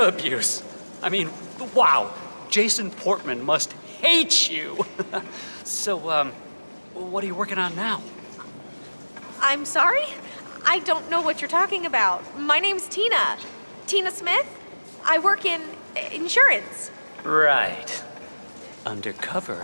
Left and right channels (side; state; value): both; inverted; correlation -1.00